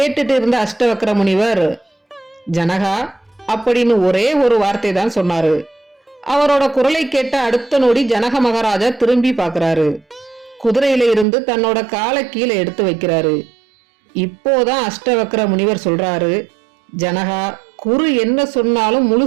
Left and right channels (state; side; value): drops out; left; at 11.2 s